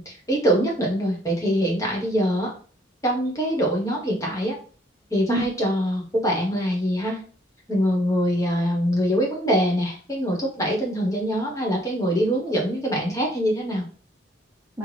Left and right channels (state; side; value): normal; both; correlation 0.63